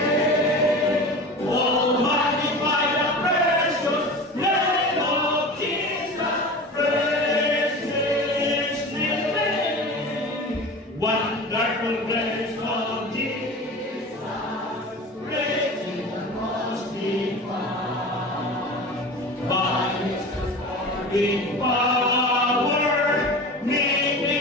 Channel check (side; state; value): both; normal; correlation 0.33